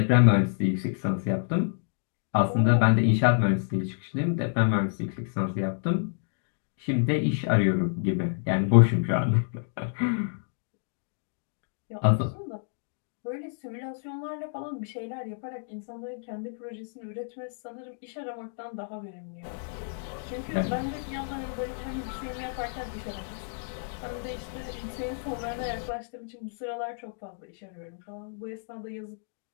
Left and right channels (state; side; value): silent; right; digital silence